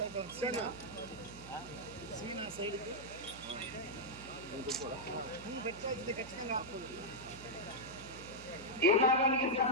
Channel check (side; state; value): right; noise; hum, 16 dB below the sound